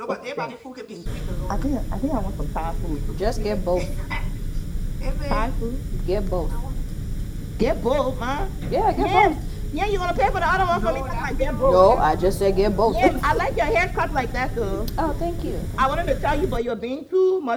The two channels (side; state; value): both; identical; correlation 1.00